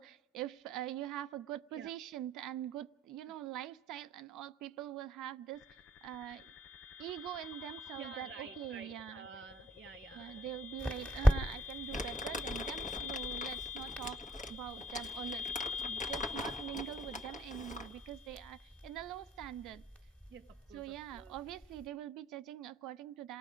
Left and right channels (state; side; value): normal; both; correlation 0.63